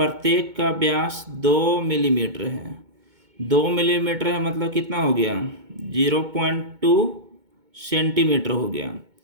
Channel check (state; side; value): late; left; 2.2 ms